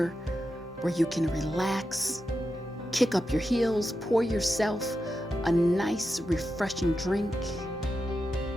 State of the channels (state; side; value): normal; both; correlation 0.89